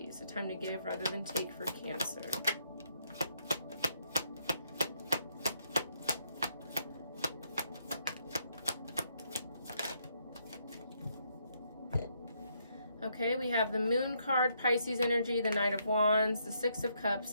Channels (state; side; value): inverted; both; correlation -0.74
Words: A time to give rather than take for Cancer. Okay, we have the Moon card, Pisces energy, the Knight of Wands, the Six of Cups,